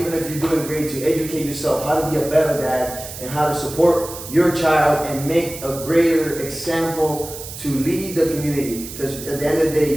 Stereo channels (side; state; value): right; noise; hiss, 11 dB below the sound